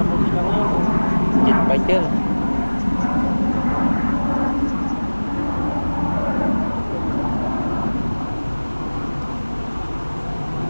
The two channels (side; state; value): both; inverted; correlation -1.00